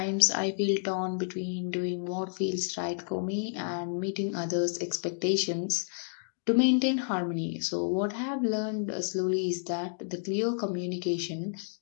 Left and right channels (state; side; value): silent; right; digital silence